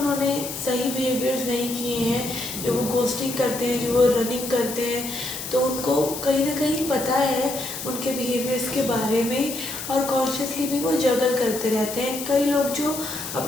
सही बिहेवियर्स नहीं किए हैं, जो वो गोस्टिंग करते हैं, जो वो रनिंग करते हैं, तो उनको कहीं ना कहीं पता है उनके बिहेवियर्स के बारे में, और कॉन्शियसली भी वो जगल करते रहते हैं. कई लोग जो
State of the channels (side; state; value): left; noise; hiss, 8 dB below the sound